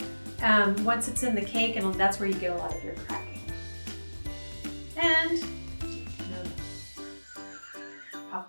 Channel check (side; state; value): both; inverted; correlation -1.00